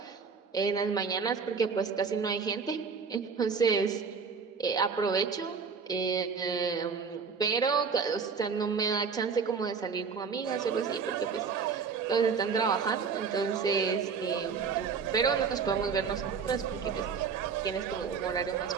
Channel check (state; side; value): quieter; left; 5.7 dB